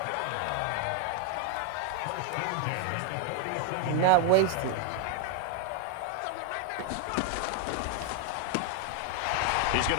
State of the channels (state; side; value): different; both; correlation 0.01